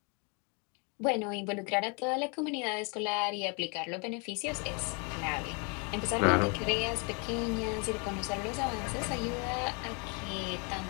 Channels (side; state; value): right; quieter; 33.9 dB